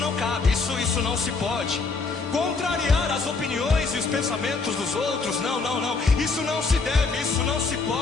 cabe, isso não se pode. Contrariar as opiniões e os pensamentos dos outros, não, isso não se deve, isso não se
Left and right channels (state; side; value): quieter; right; 4.2 dB